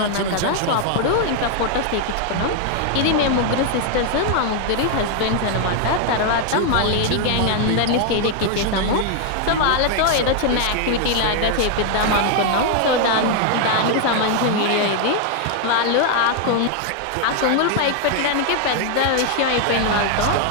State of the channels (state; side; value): different; both; correlation 0.00